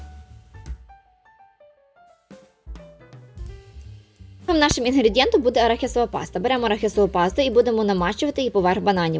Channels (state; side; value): identical; both; correlation 1.00